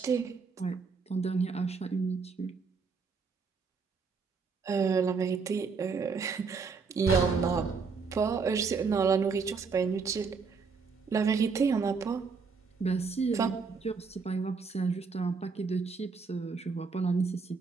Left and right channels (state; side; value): quieter; left; 5.1 dB